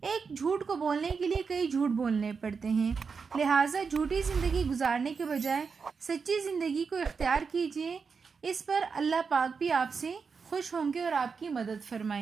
ایک جھوٹ کو بولنے کے لیے کئی جھوٹ بولنے پڑتے ہیں، لہٰذا جھوٹی زندگی گزارنے کے بجائے سچی زندگی کو اختیار کیجیے، اس پر اللہ پاک بھی آپ سے خوش ہوں گے اور آپ کی مدد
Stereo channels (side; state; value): left; quieter; 5.4 dB